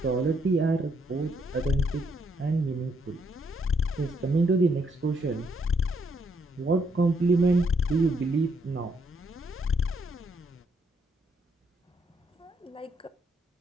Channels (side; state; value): both; normal; correlation 0.74